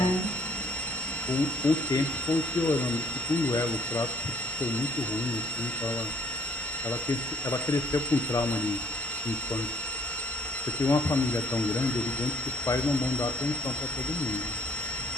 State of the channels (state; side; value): normal; both; correlation 0.60